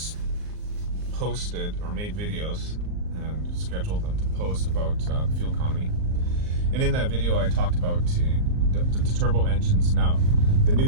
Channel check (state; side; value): late; left; 39 ms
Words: posted or made videos and scheduled them to post about the fuel economy. And in that video, I talked about the turbo engines. Now, the new